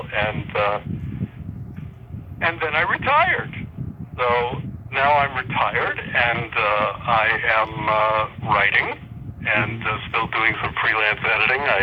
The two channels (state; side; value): identical; both; correlation 1.00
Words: and then I retired. So now I'm retired, and I am writing and still doing some freelance editing.